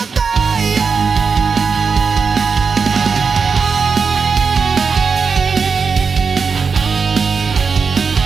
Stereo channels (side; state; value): left; quieter; 5.3 dB